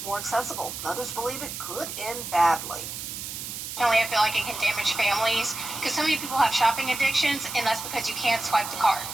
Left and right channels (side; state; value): right; noise; hiss, 7 dB below the sound